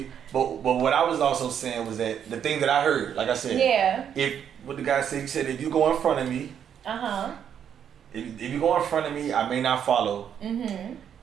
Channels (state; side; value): quieter; left; 8.7 dB